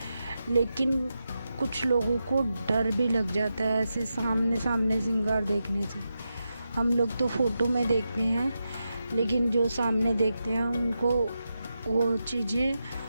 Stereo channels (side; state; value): both; inverted; correlation -0.88